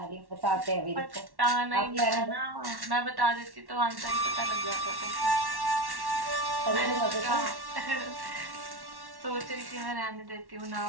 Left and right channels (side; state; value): left; late; 1.1 ms